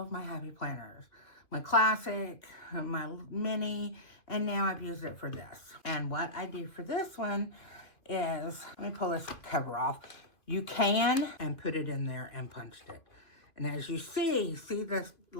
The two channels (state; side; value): late; right; 2.3 ms